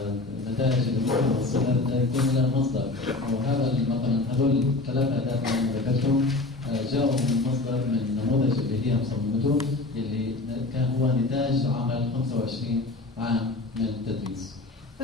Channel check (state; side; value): quieter; right; 3.2 dB